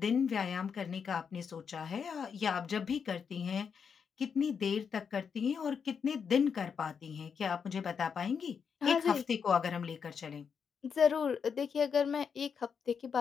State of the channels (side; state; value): right; quieter; 6.5 dB